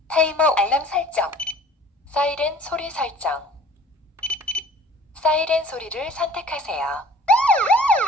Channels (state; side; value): normal; both; correlation 0.49